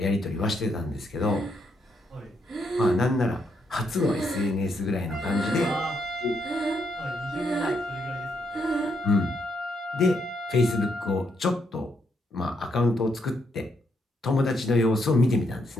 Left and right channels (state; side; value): normal; both; correlation 0.77